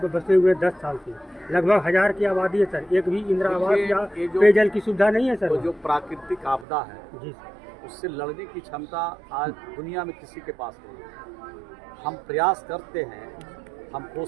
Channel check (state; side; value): drops out; left; at 6.7 s